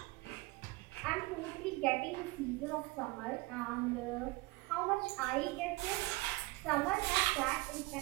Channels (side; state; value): left; quieter; 22.0 dB